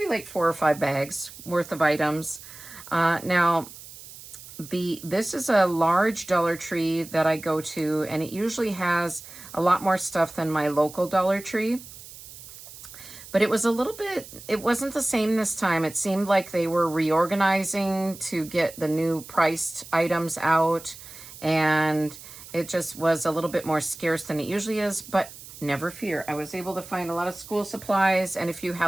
like 4 or 5 bags worth of items. Now, this is a large Dollar Tree that I go to, and it usually has a lot more stuff than my local Dollar Tree. But it was it wasn't the same this time. It seemed like they were reorganizing to get the new priced items out, and it just was a little bit more scarce than it usually is, but never fear. I was able to find a lot of school supplies and a few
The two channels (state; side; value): noise; right; hiss, 16 dB below the sound